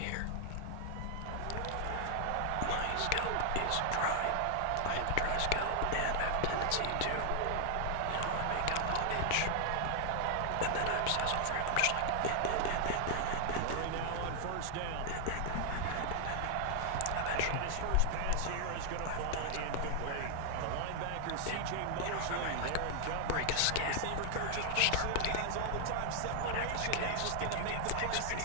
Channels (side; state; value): both; different; correlation 0.00